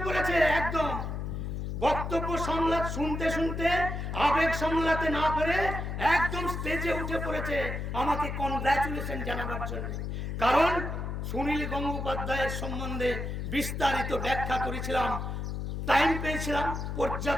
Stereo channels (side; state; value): left; noise; hum, 4 dB below the sound